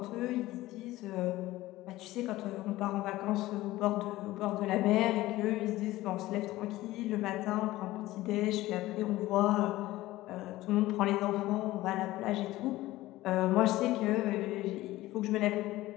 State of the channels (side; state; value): right; quieter; 17.1 dB